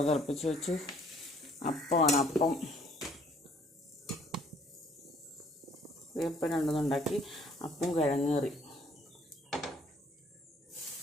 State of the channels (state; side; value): normal; both; correlation 0.61